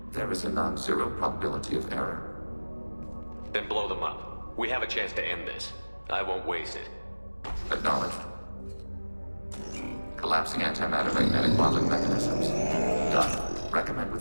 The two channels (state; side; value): inverted; both; correlation -1.00